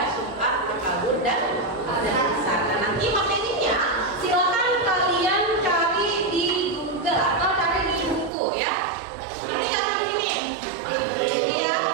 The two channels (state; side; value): drops out; left; at 8.3 s